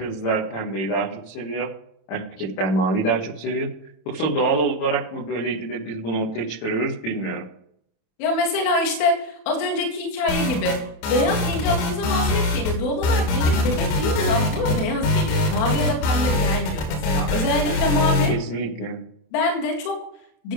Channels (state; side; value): late; right; 27 ms